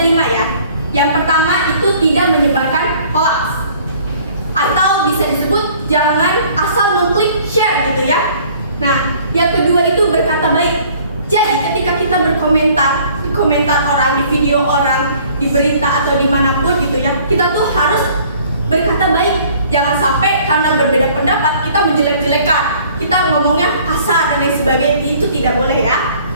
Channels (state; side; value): inverted; both; correlation -0.55